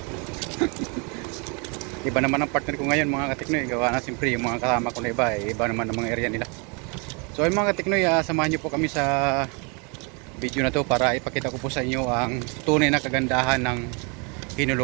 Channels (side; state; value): left; quieter; 33.3 dB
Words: Iba naman ang partner ko ngayon mga kateknoy. Gawa na siyempre yung mga kasama ko na iba. Iba naman ang mga area nila. So ay mga kateknoy, samahan nyo po kami sa video na to para ipakita ko po sa inyo ang tunay na kagandahan ng